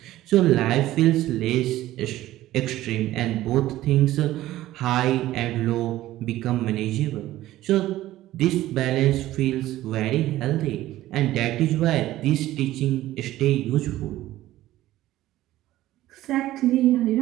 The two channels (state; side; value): quieter; left; 15.1 dB